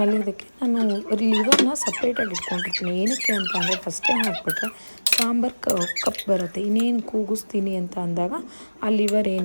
ನಾನು ಲಿವರ್ನ ಸಪ್ರೇಟಾಗಿ ಇಟ್ಕೊಂಡಿರ್ತೀನಿ. ಏನಕ್ಕೆ ಅಂತ ಅಂದರೆ ಫಸ್ಟೇ ಹಾಕ್ಬಿಟ್ರೆ ಸಾಂಬಾರು ಕಪ್ ಬರುತ್ತೆ. ಇನ್ನೇನು ಕೂಗಿಸ್ತೀನಿ ಅಂತ ಅಂದಾಗ ಆ ಲಿವರ್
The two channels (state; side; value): inverted; both; correlation -1.00